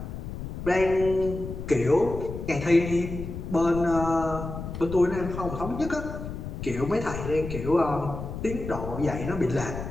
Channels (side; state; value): left; noise; rumble, 8 dB below the sound